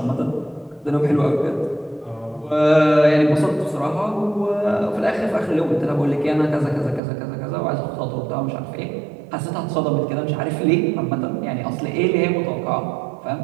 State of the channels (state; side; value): drops out; left; at 7.0 s